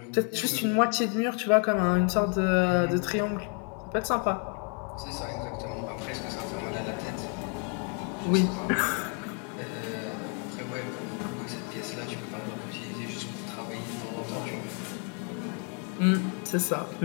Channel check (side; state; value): right; quieter; 39.6 dB